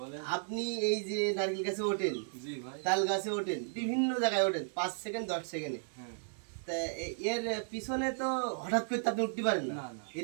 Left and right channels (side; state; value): left; silent; digital silence